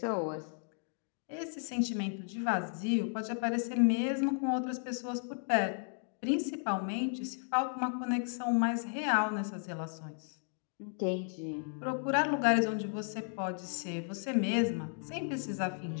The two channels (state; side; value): silent; right; 55 dB below the other